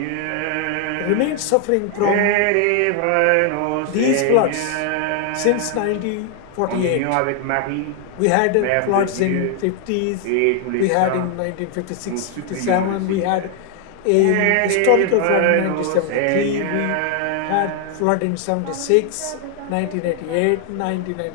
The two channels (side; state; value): both; different; correlation 0.00